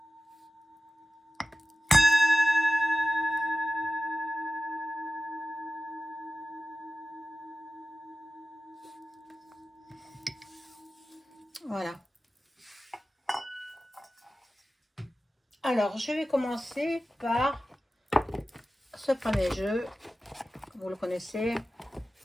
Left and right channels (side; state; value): both; normal; correlation 0.96